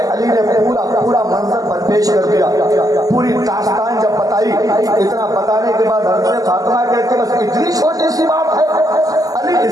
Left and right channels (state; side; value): late; left; 0.17 ms